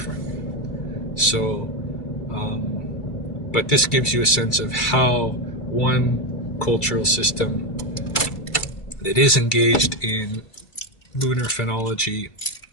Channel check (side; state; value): right; late; 2.3 ms